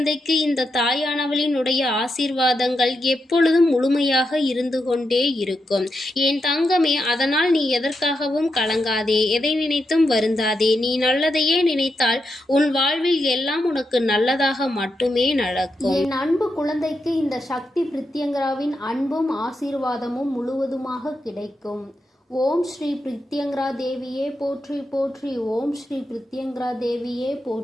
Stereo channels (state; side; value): normal; both; correlation 0.85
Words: இந்த தாயானவளினுடைய ஆசீர்வாதங்கள் எப்பொழுதும் முழுமையாக இருந்து கொண்டே இருக்கும். என் தங்கமே, அதனால் நீ எதற்காகவும் கலங்காதே, எதை நினைத்தும் வருந்தாதே. நீ நல்லதையே நினைத்தால் உன் வாழ்வில் எல்லாம் உனக்கு நல்லதாக மட்டுமே நடக்கும். என் அன்பு குழந்தைக்கு இந்த சக்தி பிரித்யங்கராவின் அன்பும் ஆசீர்வாதமும் முழுவதுமாக கிடைக்கும். ஓம் ஸ்ரீ பிரித்யங்கரா தேவியே போற்றி போற்றி. ஓம் ஸ்ரீ பிரித்யங்கரா தேவியே